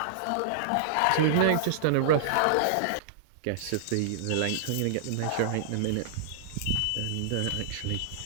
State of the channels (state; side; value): different; both; correlation -0.02